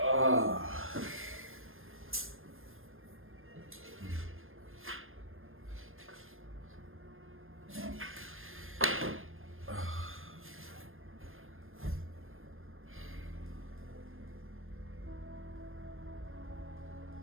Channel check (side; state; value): left; late; 0.60 ms